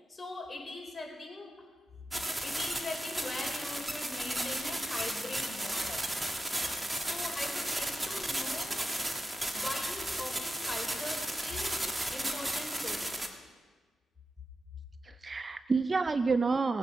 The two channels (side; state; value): both; normal; correlation 0.91